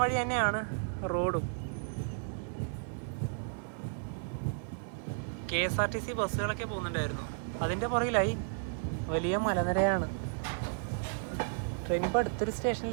വഴി തന്നെയാണ് റോഡും. KSRTC ബസ്സുകളൊക്കെ പോകുന്നുണ്ടായിരുന്നു. അതിൻ്റെ പുറകിലായി വലിയ മലനിരയാണ്. ട്രെയിൻ ഇപ്പോൾ അടുത്തൊരു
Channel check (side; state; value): left; silent; digital silence